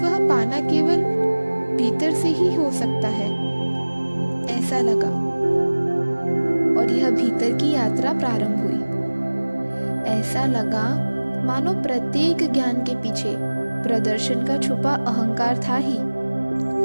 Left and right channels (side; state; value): both; inverted; correlation -1.00